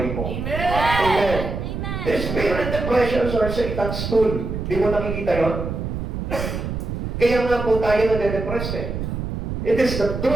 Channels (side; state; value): right; noise; rumble, 4 dB below the sound